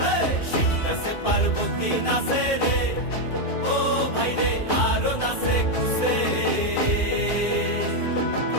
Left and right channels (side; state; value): right; late; 2.5 ms